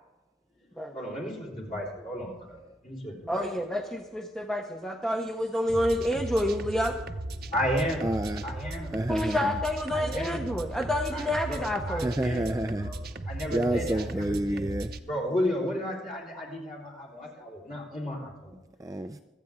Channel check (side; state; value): both; normal; correlation 0.79